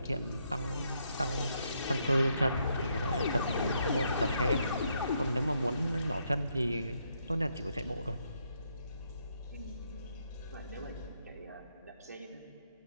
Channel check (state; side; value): inverted; both; correlation -0.75